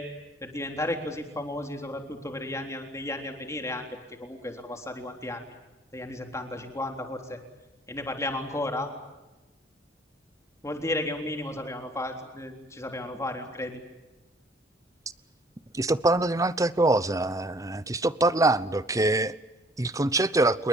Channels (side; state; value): both; normal; correlation 0.56